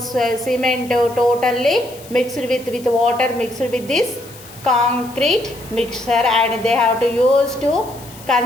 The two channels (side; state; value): left; noise; hiss, 20 dB below the sound